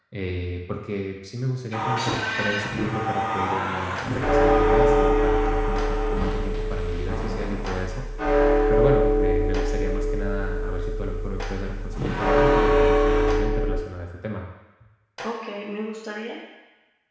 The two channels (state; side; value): identical; both; correlation 1.00